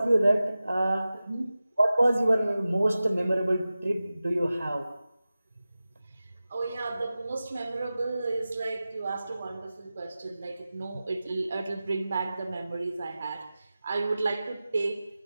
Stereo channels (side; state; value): both; inverted; correlation -0.95